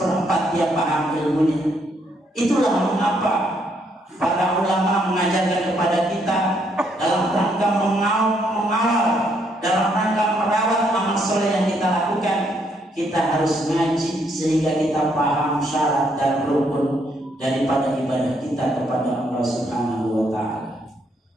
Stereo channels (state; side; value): normal; both; correlation 0.72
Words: dia paham ilmunya. Itulah mengapa para ulama mengajarkan kepada kita dalam rangka mengawal, dalam rangka merawat amal soleh yang kita lakukan, kita harus ngaji sehingga kita paham syarat dan rukun daripada ibadah kita kepada Allah Subhanahu wa Ta'ala.